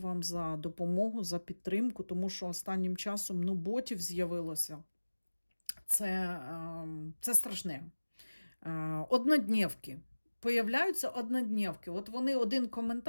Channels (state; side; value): inverted; both; correlation -1.00